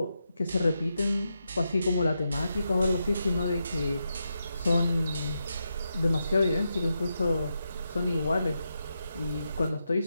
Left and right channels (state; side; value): inverted; both; correlation -0.86